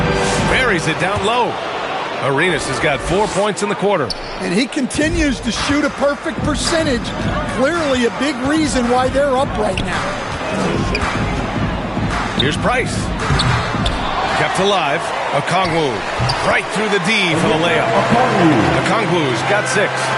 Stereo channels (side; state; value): both; identical; correlation 1.00